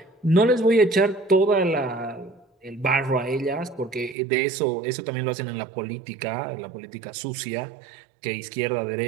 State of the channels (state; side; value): drops out; left; at 4.2 s